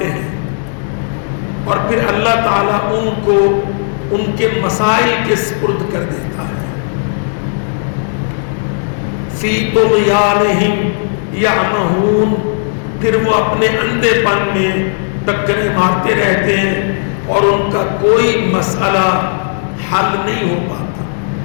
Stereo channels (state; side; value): silent; right; digital silence